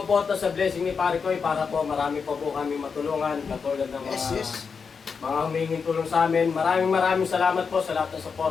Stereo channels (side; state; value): right; quieter; 5.6 dB